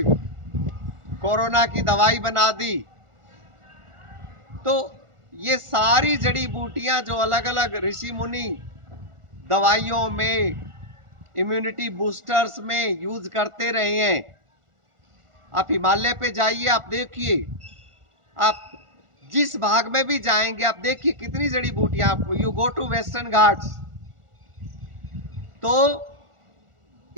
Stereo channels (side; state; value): left; late; 1.4 ms